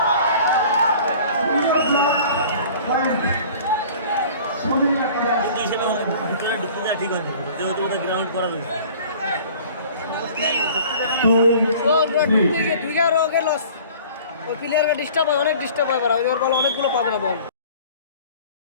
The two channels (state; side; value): inverted; both; correlation -0.47